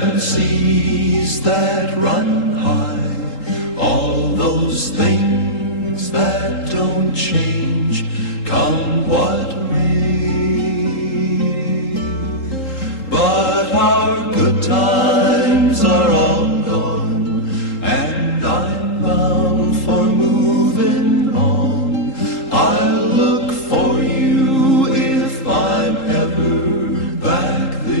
Seven seas that run high, all those things that don't change, come what may. But our good times are all gone, and I'm bound for moving on. I'll look for you if I'm ever back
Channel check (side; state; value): right; late; 3.8 ms